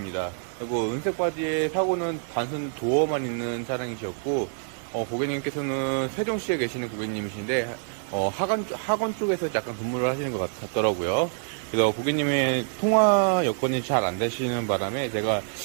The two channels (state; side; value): silent; left; digital silence